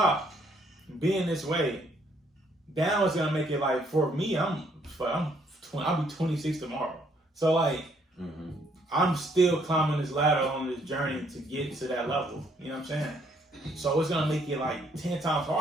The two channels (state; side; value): normal; both; correlation 0.68